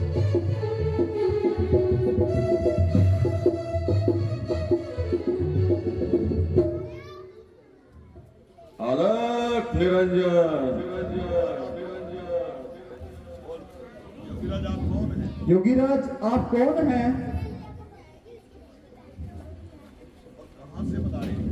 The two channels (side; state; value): both; identical; correlation 1.00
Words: अलख निरंजन। योगीराज आप कौन हैं